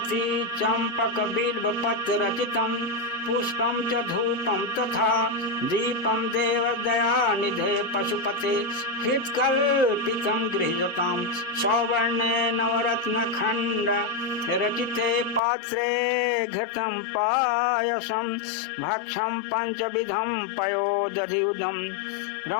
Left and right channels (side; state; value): right; drops out; at 15.4 s